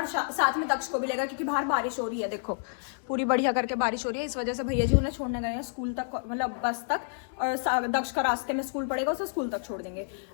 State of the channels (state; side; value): silent; right; digital silence